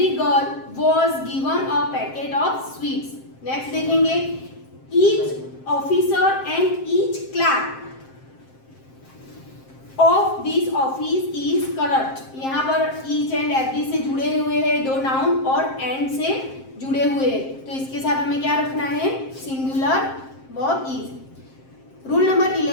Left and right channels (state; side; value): late; right; 7.6 ms